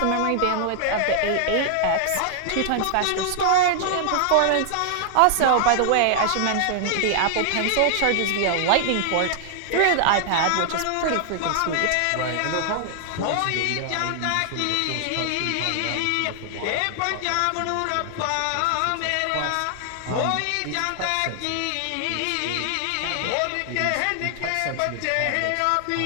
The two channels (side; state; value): both; different; correlation 0.00